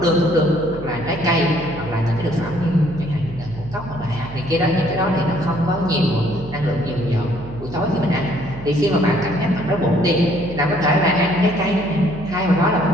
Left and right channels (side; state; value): right; noise; hum, 14 dB below the sound